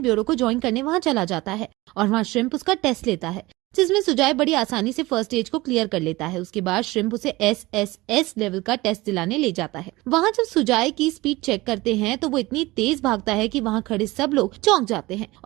ब्यूरो को ज्वाइन करने वहां चला जाता है और वहां श्रिम्प उसका टेस्ट लेता है, जिसमें सुजाय बड़ी आसानी से फर्स्ट स्टेज को क्लियर कर लेता है। उसके बाद श्रिम्प उसे SSS लेवल का टेस्ट दिलाने ले जाता है। वहां जब सुजाय की स्पीड चेक करते हैं तो वो इतनी तेज भागता है कि वहां खड़े सब लोग चौंक जाते हैं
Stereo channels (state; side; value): quieter; left; 20.5 dB